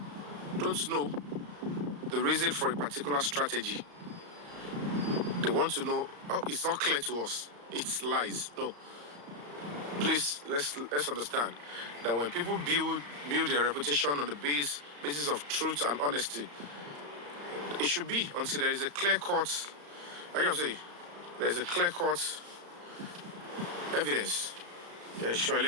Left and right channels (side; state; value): left; late; 35 ms